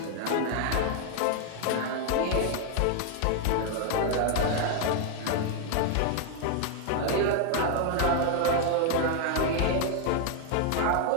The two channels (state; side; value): different; both; correlation 0.00